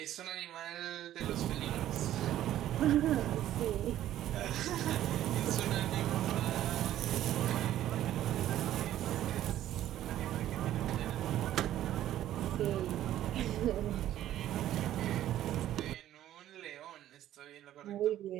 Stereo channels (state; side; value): quieter; left; 12.6 dB